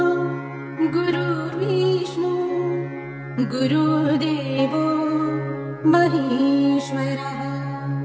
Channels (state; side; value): identical; both; correlation 1.00